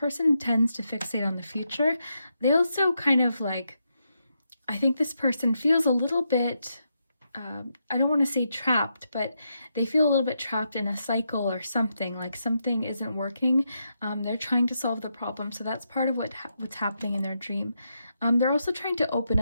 tends to fixate on the future. They also kind of like, I think this person feels a little bit, I don't want to say trapped, but they feel a little bit trapped in a cycle or something, like something isn't working. They're trying to solve the problem. So that's part of what's happening in their dream. They're also trying to open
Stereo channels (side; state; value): both; inverted; correlation -0.83